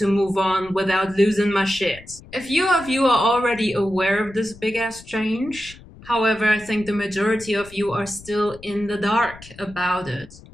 move on without losing my shit. A few of you are already aware of this big ass change. However, I think the majority of you are still in the dark about it.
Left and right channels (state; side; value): noise; left; rumble, 20 dB below the sound